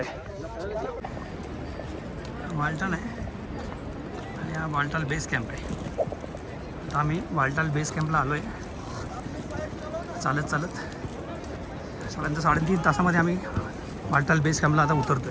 वालटाल आहे आणि हा वालटाल बेस कॅम्प आहे. आता आम्ही वालटाल बेस कॅम्पला आलो आहे. चालत साधारणतः 3.5 तासामध्ये आम्ही वालटाल बेस कॅम्पला आता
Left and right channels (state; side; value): identical; both; correlation 1.00